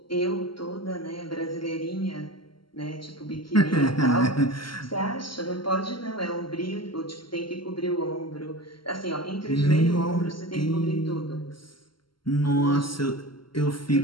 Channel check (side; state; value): right; late; 0.73 ms